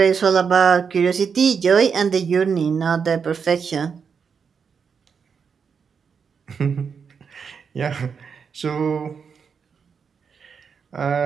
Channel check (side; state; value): left; quieter; 6.2 dB